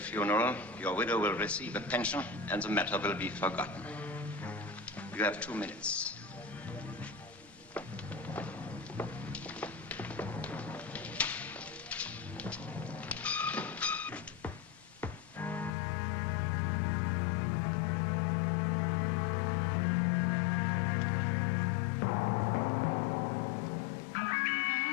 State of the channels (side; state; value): right; drops out; at 15.7 s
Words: your widow will receive a pension, and the matter will be forgotten. You have 2 minutes.